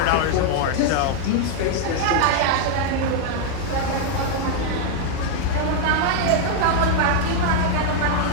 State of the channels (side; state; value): both; different; correlation 0.00